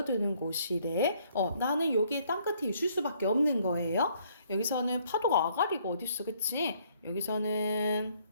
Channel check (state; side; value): inverted; both; correlation -0.65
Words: 곳이래. 나는 여기에 땅끝에 있을 수밖에 없는 거예요. 여기서는 파도가 아가리가 어딨어, 그치? 여기서는